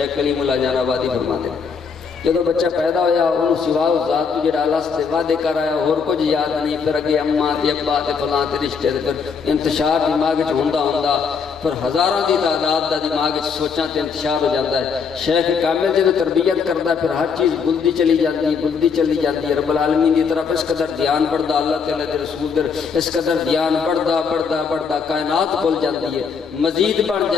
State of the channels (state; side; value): quieter; right; 5.9 dB